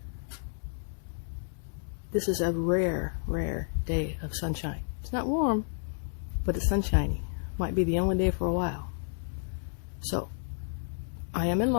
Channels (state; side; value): silent; right; 57 dB below the other